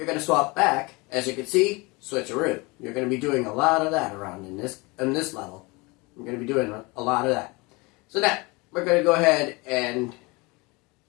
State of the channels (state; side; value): quieter; right; 25.8 dB